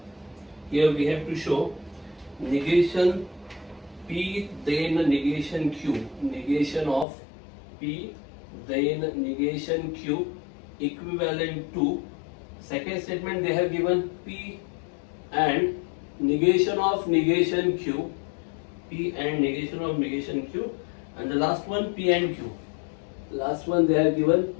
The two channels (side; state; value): right; drops out; at 7.1 s